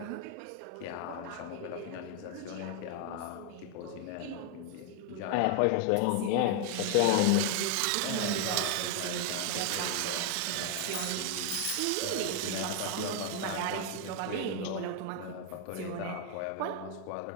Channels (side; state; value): both; different; correlation 0.00